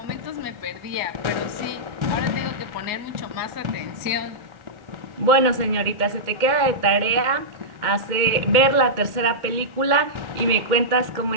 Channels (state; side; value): late; left; 2.1 ms